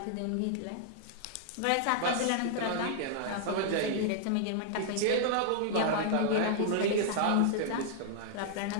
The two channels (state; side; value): different; both; correlation -0.01